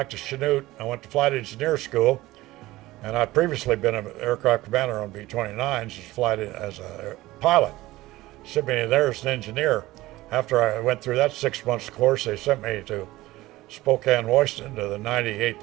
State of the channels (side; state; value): left; quieter; 17.9 dB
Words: to Chanute. I went to flight engineer school, and I'd previously been an aircraft commander on B-29s as a pilot. Sent me there as an engineer. After I went through that 6 months course, they sent me to Spokane, Washington, to the